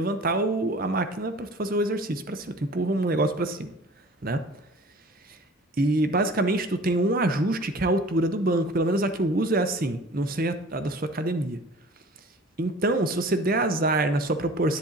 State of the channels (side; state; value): both; normal; correlation 0.45